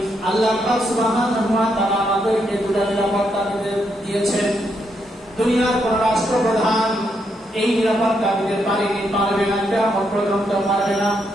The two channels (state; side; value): normal; both; correlation 0.78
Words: আল্লাহ পাক সুবহানাহু ওয়া তাআলা আমাদেরকে দুটা নিরাপত্তা দিয়েছেন। দুনিয়ার কোন রাষ্ট্রপ্রধান এই নিরাপত্তা দিতে পারবে না, কিয়ামত পর্যন্ত পারবে না।